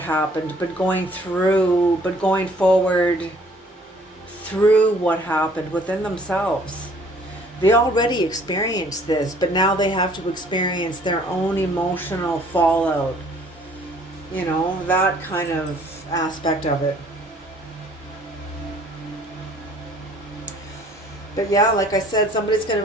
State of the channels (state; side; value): normal; both; correlation 0.57